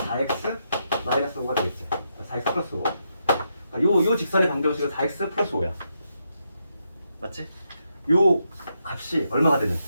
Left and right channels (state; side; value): inverted; both; correlation -0.81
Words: 마이너스 5가 되겠지. 4x 플러스 5. 요 직선의 방정식은 4x 플러스 5야. 맞지? 요 값이 얼마가 되는?